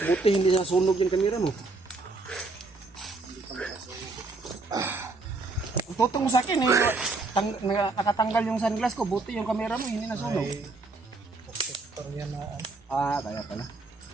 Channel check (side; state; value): left; quieter; 3.6 dB